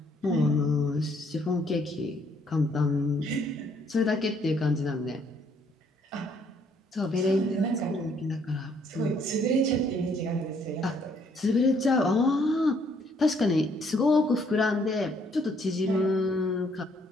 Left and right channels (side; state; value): both; normal; correlation 0.67